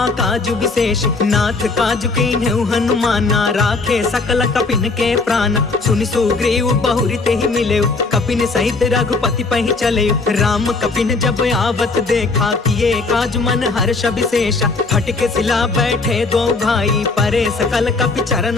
काजु विशेष। नाथ काजु कीन्हु हनुमाना, राखे सकल कपिन के प्राण। सुनि सुग्रीव बहुरी ते ही मिले, कपिन सहित रघुपति पहि चले। राम कपिन जब आवत देखा, किए काज मन हर्ष विशेषा। फटके सिला बैठे दो भाई, परे सकल कपि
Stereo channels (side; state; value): right; quieter; 3.8 dB